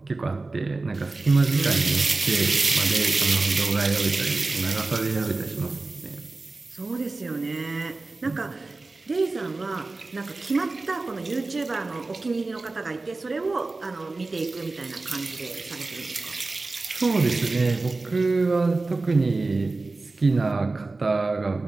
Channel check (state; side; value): quieter; left; 3.4 dB